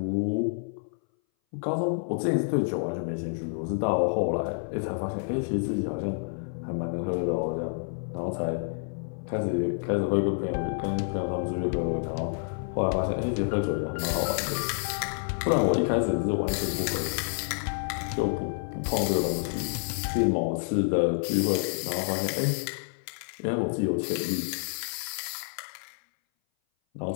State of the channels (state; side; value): silent; right; 58 dB below the other